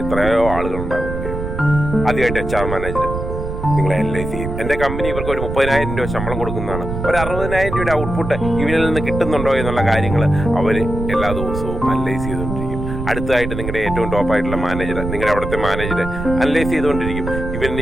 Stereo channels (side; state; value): right; noise; rumble, 5 dB below the sound